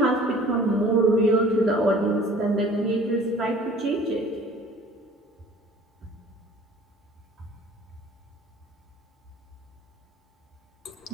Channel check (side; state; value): both; normal; correlation 0.49